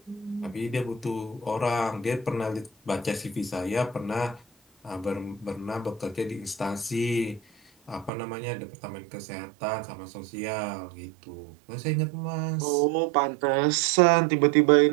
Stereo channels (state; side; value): drops out; left; at 8.1 s